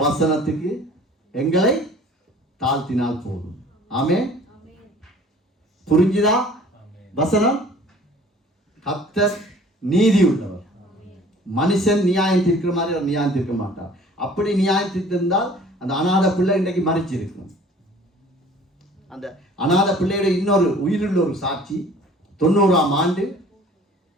வசனத்துக்கு எங்களை தாழ்த்தினால் போதும். ஆமென். புரிஞ்சுதா? வசனம், கர்த்தர் நீதி உள்ளவர். மனுஷன் நியாயம் தீர்க்கிற மாதிரி அவர் நியாயம் தீர்க்க மாட்டார். அப்படி நியாயம் தீர்த்திருந்தால் அந்த அநாத பிள்ளை இன்றைக்கு மறிச்சு இருக்கும். அந்த அநாத பிள்ளையோட இன்னொரு உயிருள்ள ஒரு சாட்சி, 90ஆம் ஆண்டு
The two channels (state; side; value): normal; both; correlation 0.50